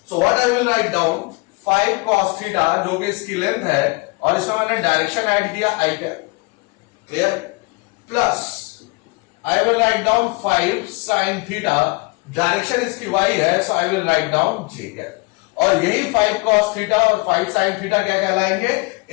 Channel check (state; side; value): quieter; right; 26.7 dB